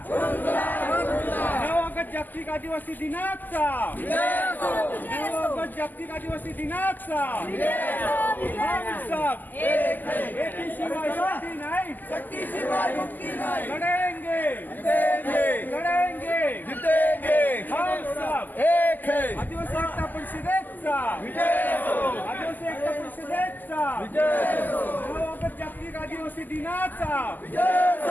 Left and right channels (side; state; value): right; late; 0.086 ms